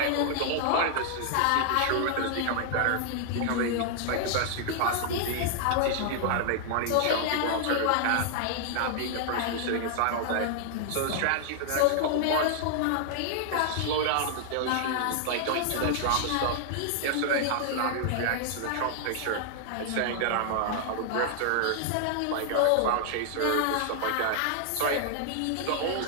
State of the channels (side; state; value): both; different; correlation 0.00